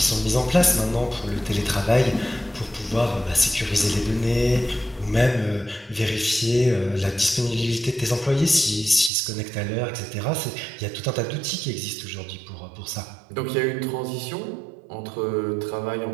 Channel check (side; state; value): left; drops out; at 9.1 s